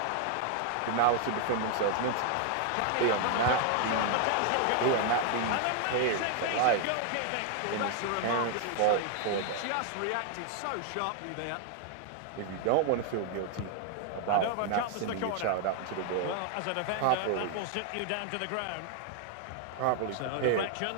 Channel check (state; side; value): different; both; correlation 0.00